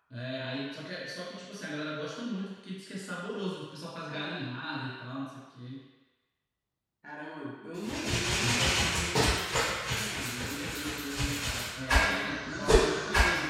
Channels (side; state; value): both; identical; correlation 1.00